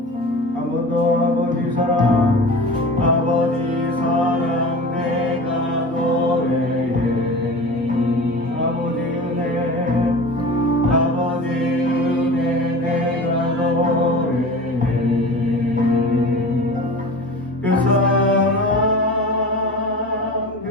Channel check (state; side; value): normal; both; correlation 0.35